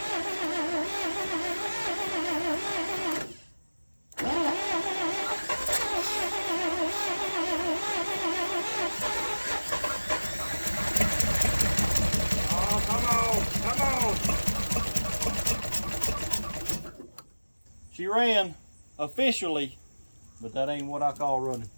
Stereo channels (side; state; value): both; inverted; correlation -1.00